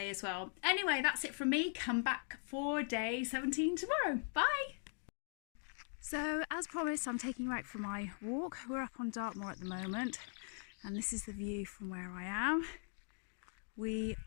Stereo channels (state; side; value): silent; right; 51 dB below the other